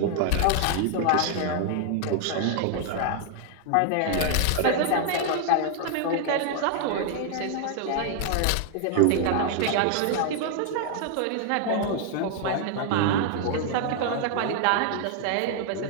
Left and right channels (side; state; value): both; different; correlation 0.00